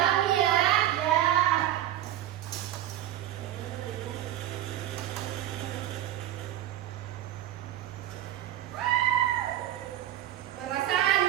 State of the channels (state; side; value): quieter; left; 12.8 dB